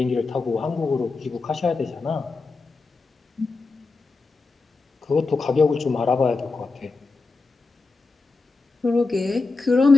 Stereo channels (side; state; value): right; quieter; 3.9 dB